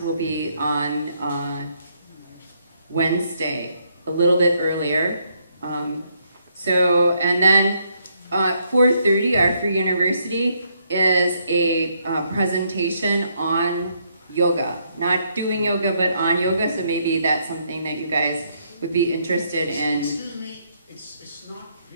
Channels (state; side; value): inverted; both; correlation -0.73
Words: will be on Wednesday, a little bit earlier. And then 4:30, our Free University is a presentation on yoga. Not doing yoga, but on yoga, so maybe that's something that you guys would be interested in. Excuse me, it's not